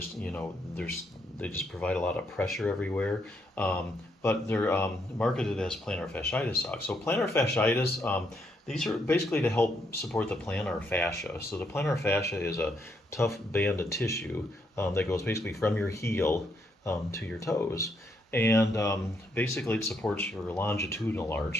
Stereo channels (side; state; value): both; normal; correlation 0.75